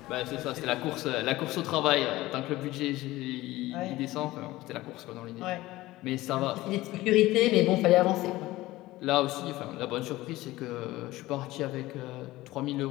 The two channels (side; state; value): right; quieter; 17.8 dB